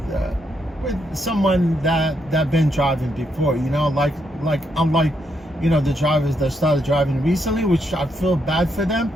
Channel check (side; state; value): both; normal; correlation 0.78